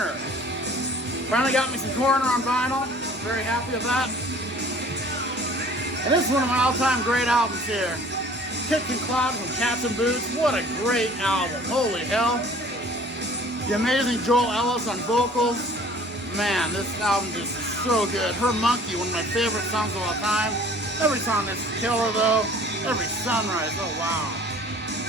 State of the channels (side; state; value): both; normal; correlation 0.50